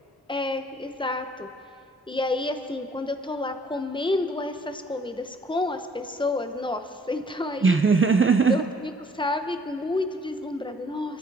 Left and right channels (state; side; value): normal; both; correlation 0.60